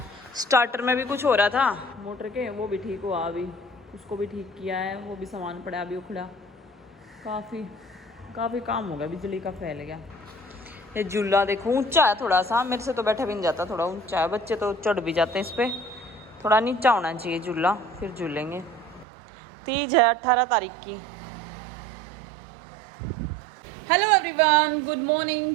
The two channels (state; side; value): drops out; left; at 19.1 s